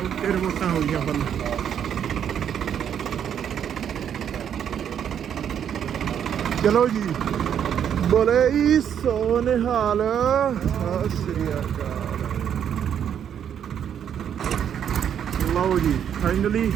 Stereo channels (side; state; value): left; quieter; 8.9 dB